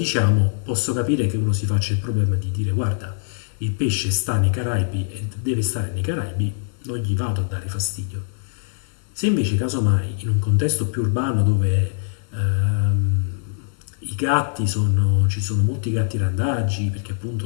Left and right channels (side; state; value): right; silent; digital silence